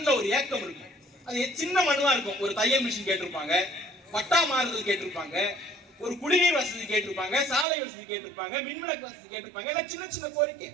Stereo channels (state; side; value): drops out; left; at 7.7 s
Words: ஒரு ஏக்கம் இருக்கும். அது சின்ன மனுவா இருக்கும். ஒரு தையல் மிஷின் கேட்டிருப்பாங்க, பட்டா மாறுதல் கேட்டிருப்பாங்க, ஒரு குடிநீர் வசதி கேட்டிருப்பாங்க, சாலை வசதி கேட்டிருப்பாங்க, மின்விளக்கு வசதி கேட்டிருப்பாங்க. எல்லாம் சின்ன சின்ன கோரிக்கை.